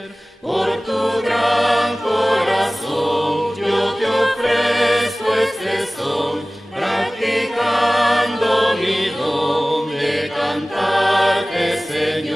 Por tu gran corazón yo te ofrezco este son, practicando mi don de cantarte,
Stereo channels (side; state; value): both; normal; correlation 0.98